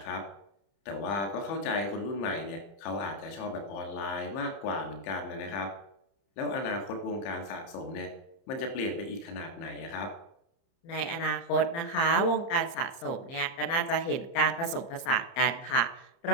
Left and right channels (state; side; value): late; right; 30 ms